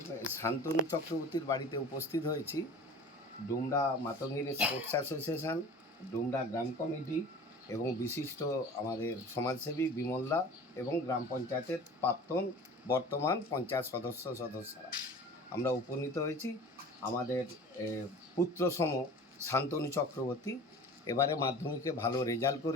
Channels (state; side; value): normal; both; correlation 0.40